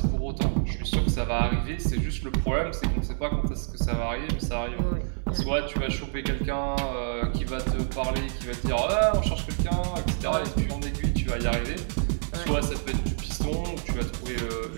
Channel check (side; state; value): left; silent; 58 dB below the other